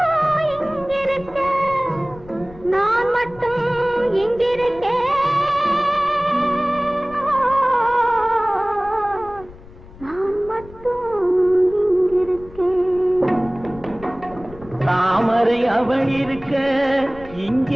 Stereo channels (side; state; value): left; noise; rumble, 20 dB below the sound